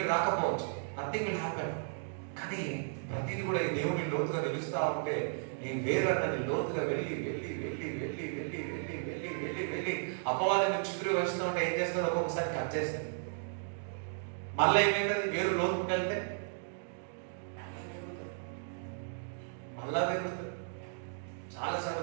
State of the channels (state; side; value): silent; left; digital silence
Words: రాకపోవచ్చు, నథింగ్ విల్ హ్యాపెన్. కానీ ప్రతిదీ కూడా ఈ దేవుడిని లోతుగా తెలుస్తా ఉంటే నీ వేరన్నది లోతుగా వెళ్ళి వెళ్ళి వెళ్ళి వెళ్ళి వెళ్ళి వెళ్ళి వెళ్ళి వెళ్ళి వెళ్ళి అపవాదాన్ని చుట్టూ వేస్తూ ఉంటే ఏం చేస్తాడు? ఒక్కొక్కసారి కట్ చేస్తాడు. మళ్ళీ ఏమైతుంది? వేరు లోతుకు వెళ్తే మళ్ళా పెరుగుతుంది. చాలాసార్లు